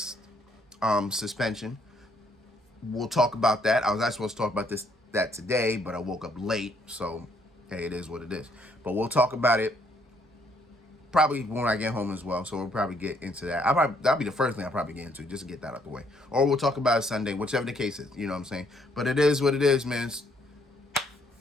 suspension. We'll talk about that. I was actually supposed to talk about that today, but I woke up late, so hey, it is what it is. But we'll talk about it probably when I get home as well. So we'll probably get into that. That'll be the first thing I'll probably get into, just to get that out the way. Or we'll talk about it Sunday, whichever the case is. You know what I'm saying? But it is what it is, man.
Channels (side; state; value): both; normal; correlation 0.69